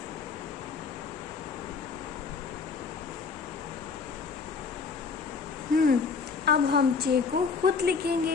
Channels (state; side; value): quieter; right; 5.1 dB